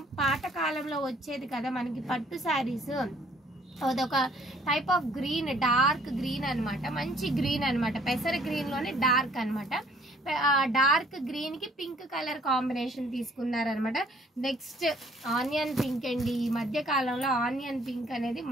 పాత కాలంలో వచ్చేది కదా మనకి పట్టు శారీస్, అదొక type of green, dark green అనమాట. మంచి గ్రీన్ అనమాట. పెసర గ్రీన్ లోనే డార్క్ అనమాట. డార్క్ గ్రీన్ కి పింక్ కలర్ కాంబినేషన్ తీసుకున్నారనమాట. నెక్స్ట్ ఆనియన్ పింక్ అండి. ఈ మధ్య కాలంలో ఆనియన్ పింక్ అనేది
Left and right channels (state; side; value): normal; both; correlation 0.61